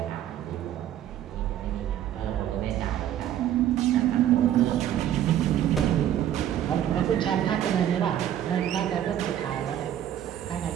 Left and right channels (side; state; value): left; quieter; 11.1 dB